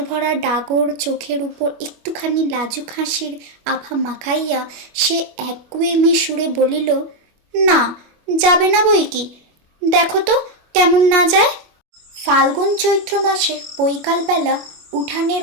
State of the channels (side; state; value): left; late; 25 ms